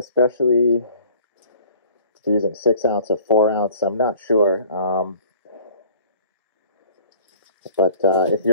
if you're using 6 ounce or 4 ounce. I'm not sure. But if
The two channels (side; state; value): both; inverted; correlation -0.51